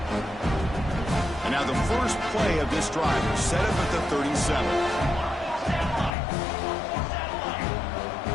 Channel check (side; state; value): right; drops out; at 6.2 s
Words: And now the first play of this drive is set up at the 37.